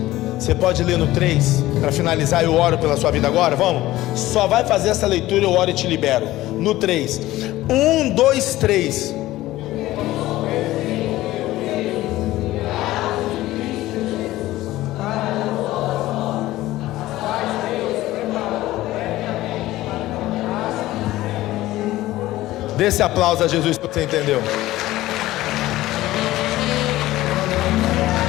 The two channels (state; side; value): quieter; right; 16.4 dB